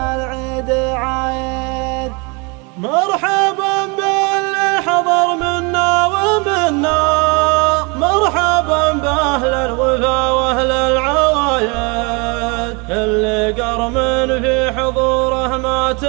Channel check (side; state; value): left; quieter; 30.4 dB